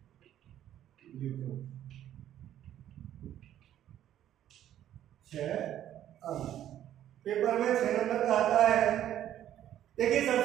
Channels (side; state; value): left; quieter; 11.5 dB